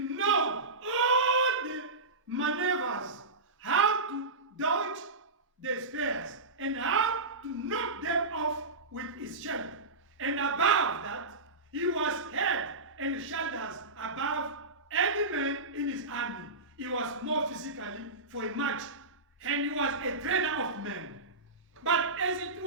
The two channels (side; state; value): left; quieter; 3.3 dB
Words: all the maneuvers, how to dodge the spears, and how to knock them off with his shield. And above that, he was head and shoulders above any man in his army. He was more physically for a match, and he was a trainer of men. But as it